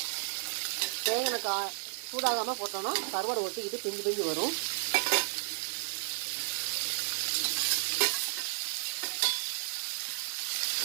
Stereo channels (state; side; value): silent; left; 56 dB below the other